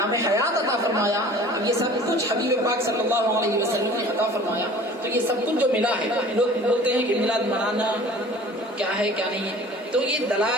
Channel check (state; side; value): normal; both; correlation 0.46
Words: حیات عطا فرمایا، یہ سب کچھ حبیب پاک صلی اللہ علیہ وسلم نے عطا فرمایا۔ تو یہ سب کچھ جو ملا ہے، لوگ بولتے ہیں کہ میلاد منانا کیا ہے کیا نہیں ہے، تو یہ